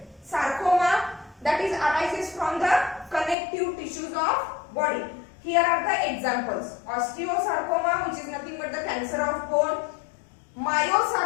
Sarcoma, that is arises from the connective tissues of body. Here are the examples. Osteosarcoma, which is nothing but the cancer of bone.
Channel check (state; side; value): drops out; right; at 3.4 s